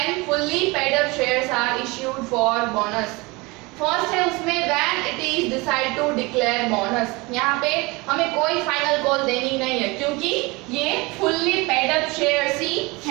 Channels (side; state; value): left; quieter; 24.7 dB